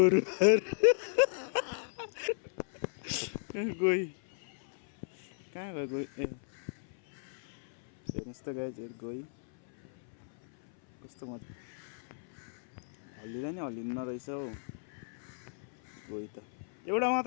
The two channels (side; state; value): right; silent; 55 dB below the other